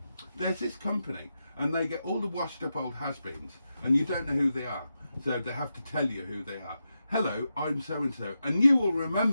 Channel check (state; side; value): inverted; both; correlation -0.88